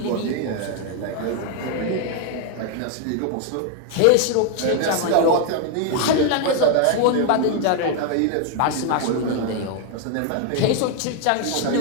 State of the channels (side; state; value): both; different; correlation 0.00